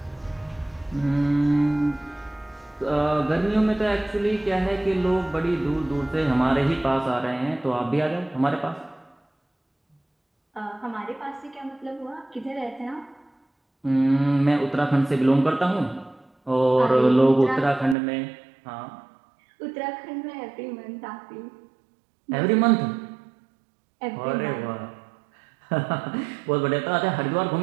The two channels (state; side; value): drops out; left; at 17.9 s